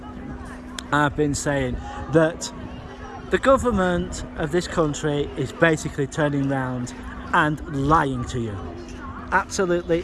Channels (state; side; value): identical; both; correlation 1.00